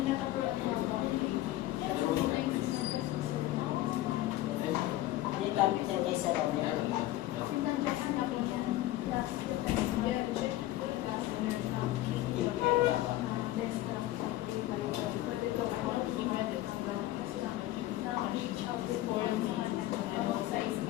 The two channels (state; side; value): quieter; right; 15.6 dB